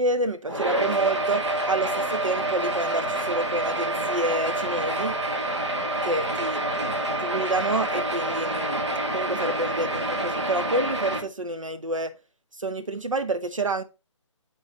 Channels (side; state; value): both; normal; correlation 0.05